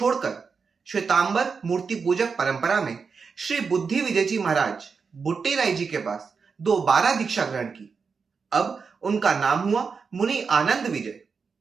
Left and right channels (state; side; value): quieter; left; 5.3 dB